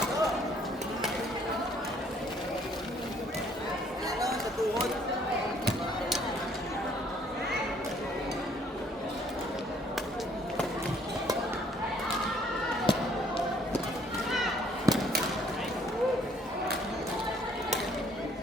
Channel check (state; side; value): normal; both; correlation 0.62